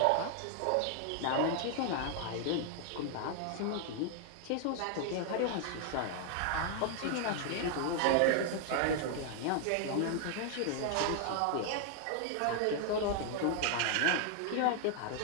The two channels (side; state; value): both; different; correlation 0.00